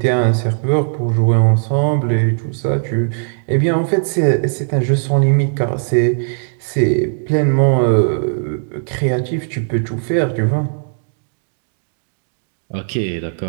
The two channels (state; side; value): silent; left; digital silence